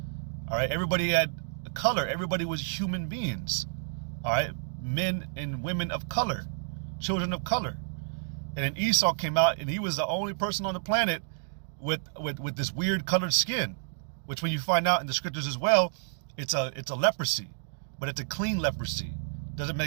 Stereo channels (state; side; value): silent; left; digital silence